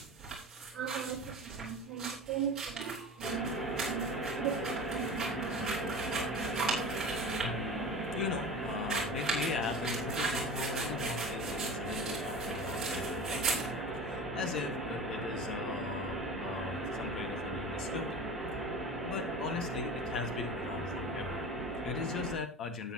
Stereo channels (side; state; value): both; normal; correlation 0.34